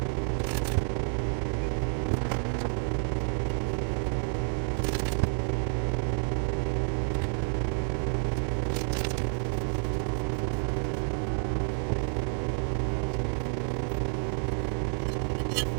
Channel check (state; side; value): silent; left; 58 dB below the other